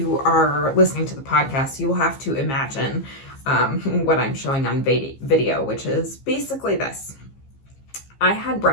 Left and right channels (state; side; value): late; right; 15 ms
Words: are listening to the podcast, you will have to imagine what I'm showing on video, which is basically this. I had